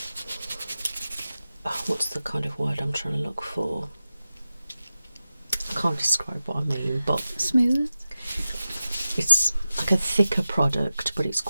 what's the kind of word I'm trying to look for? I can't describe what I mean, but Smooth? it's like a thicker product, but it's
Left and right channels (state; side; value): inverted; both; correlation -0.94